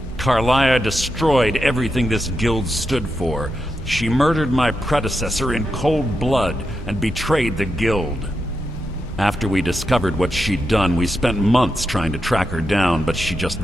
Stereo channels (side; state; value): both; normal; correlation 0.86